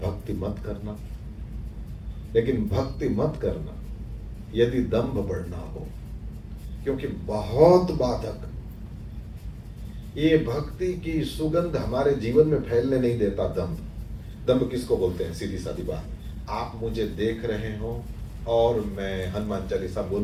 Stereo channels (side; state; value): both; identical; correlation 1.00